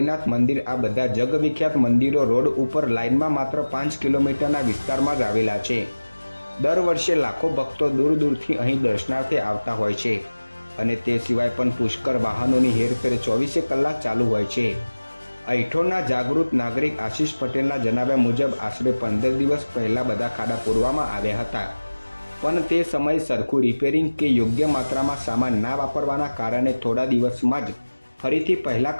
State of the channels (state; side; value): inverted; both; correlation -1.00